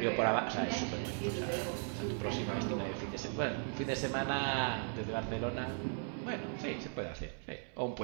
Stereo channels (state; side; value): silent; left; 53 dB below the other